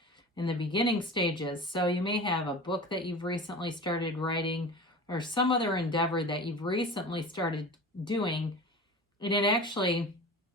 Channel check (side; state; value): both; normal; correlation 0.34